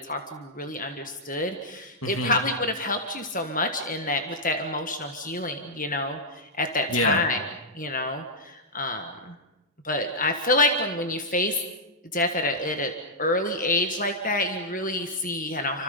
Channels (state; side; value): normal; both; correlation -0.08